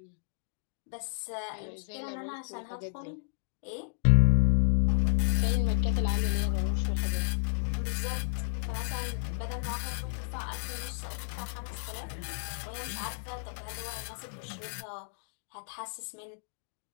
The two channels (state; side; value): silent; right; digital silence